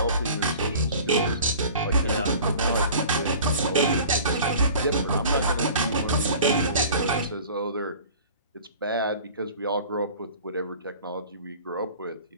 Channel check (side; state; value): both; inverted; correlation -0.44